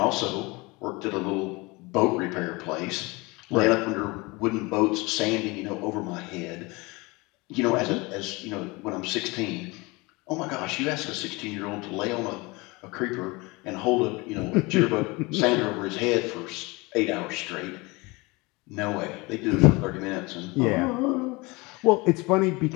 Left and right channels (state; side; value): quieter; right; 24.8 dB